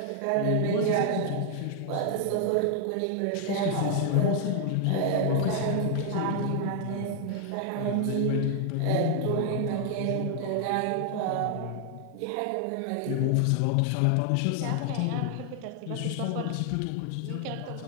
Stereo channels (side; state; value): both; different; correlation 0.00